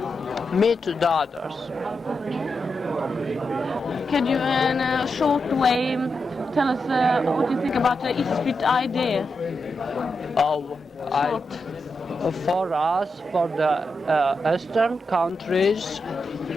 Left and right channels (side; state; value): both; normal; correlation 0.86